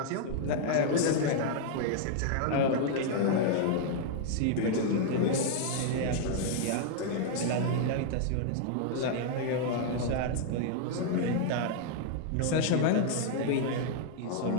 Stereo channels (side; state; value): both; different; correlation -0.01